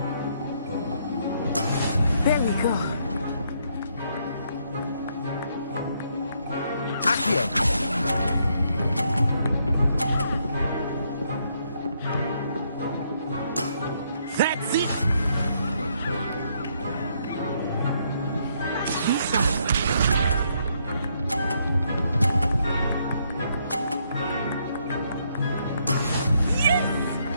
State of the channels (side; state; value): both; inverted; correlation -0.73